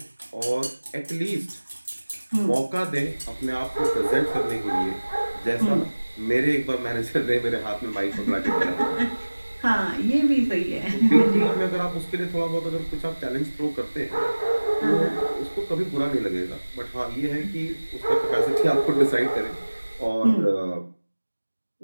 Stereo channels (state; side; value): inverted; both; correlation -1.00